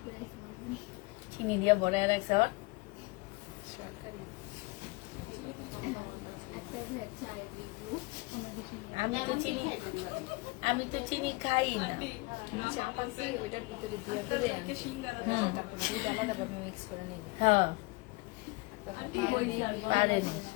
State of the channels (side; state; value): right; quieter; 25.2 dB